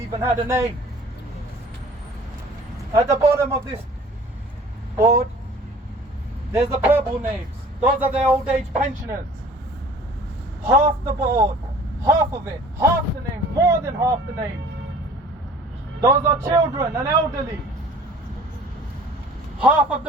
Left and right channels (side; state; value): both; normal; correlation 0.48